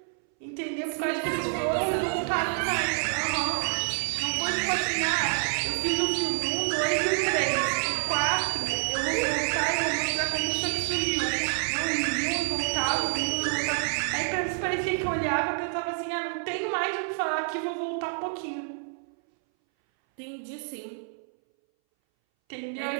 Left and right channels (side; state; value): left; silent; 59 dB below the other